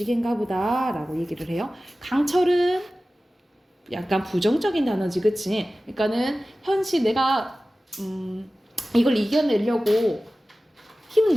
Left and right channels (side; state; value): both; normal; correlation 0.96